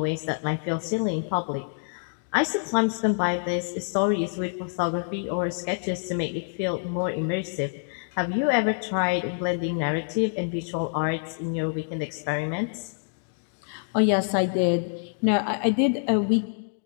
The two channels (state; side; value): silent; right; digital silence